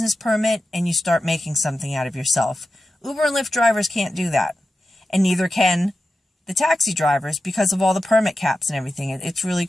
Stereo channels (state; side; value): normal; both; correlation 0.91